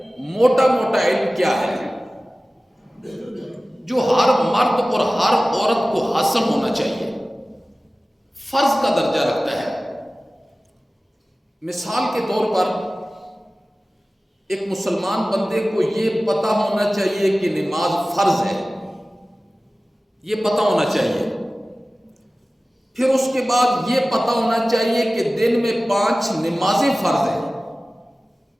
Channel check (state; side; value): normal; both; correlation 0.97